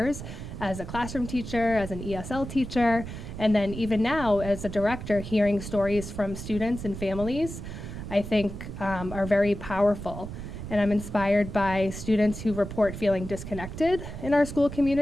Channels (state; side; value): noise; right; rumble, 9 dB below the sound